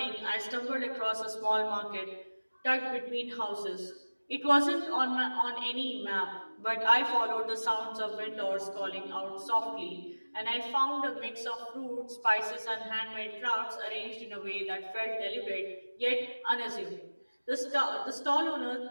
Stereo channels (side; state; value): both; inverted; correlation -1.00